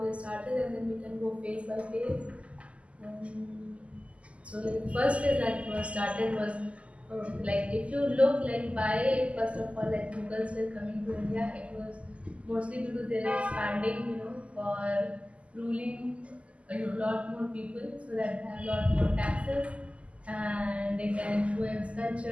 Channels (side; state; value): left; late; 0.061 ms